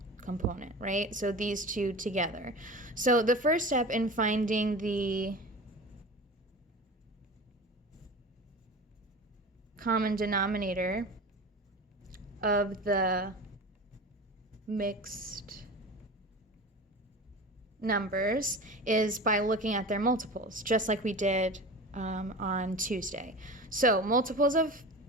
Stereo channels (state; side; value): normal; both; correlation 0.32